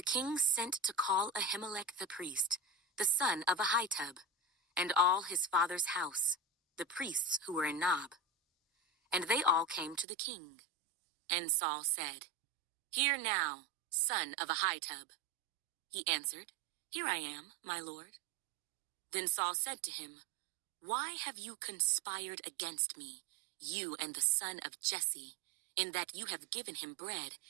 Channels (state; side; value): drops out; left; at 10.1 s